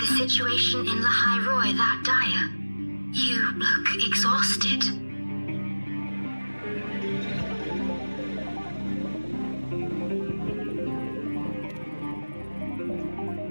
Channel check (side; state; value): both; inverted; correlation -1.00